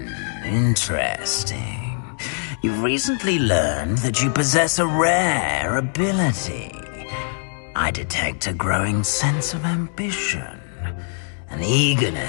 Interesting. You've recently learned that you possess a rare ability. I detect a growing sense of ambition, an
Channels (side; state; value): right; silent; digital silence